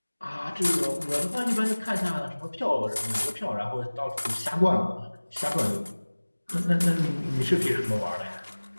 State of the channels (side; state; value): both; inverted; correlation -1.00